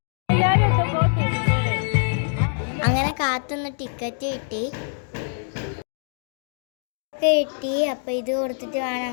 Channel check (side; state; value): right; silent; 63 dB below the other